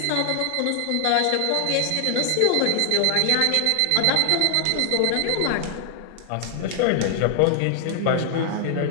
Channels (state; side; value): different; both; correlation 0.00